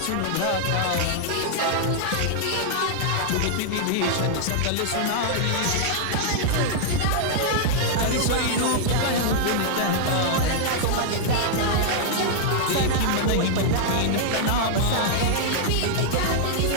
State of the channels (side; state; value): both; different; correlation -0.01